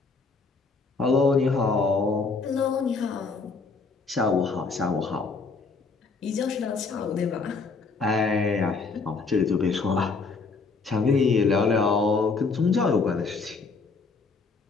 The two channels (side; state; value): right; quieter; 4.3 dB